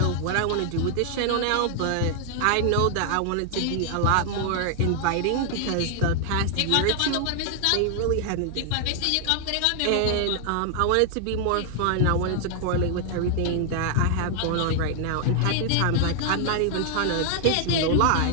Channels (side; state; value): both; different; correlation 0.00